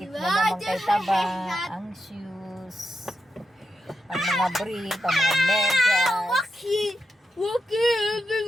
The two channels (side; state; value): both; normal; correlation 0.86